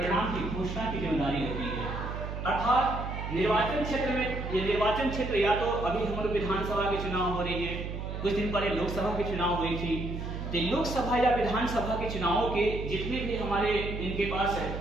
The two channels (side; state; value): right; noise; hum, 6 dB below the sound